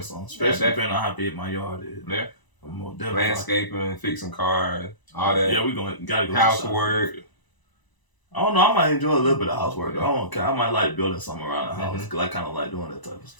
something. Especially depending on how big my yard is. Yeah. I'm more definitely landscaping, fixing cars, all that. Yeah, gotta go housework. I don't know. I might enjoy a little bit of housework. I might like building something around the house because I kind of like doing that type of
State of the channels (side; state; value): right; late; 1.0 ms